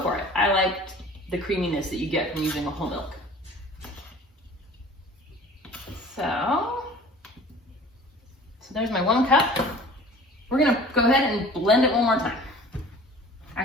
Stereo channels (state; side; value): normal; both; correlation 0.46